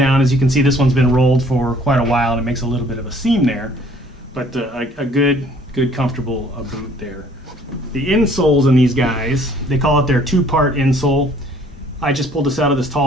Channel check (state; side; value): normal; both; correlation 0.58